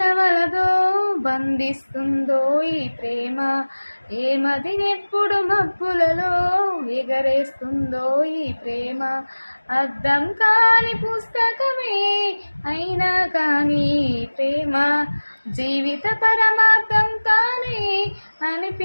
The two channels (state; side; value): inverted; both; correlation -1.00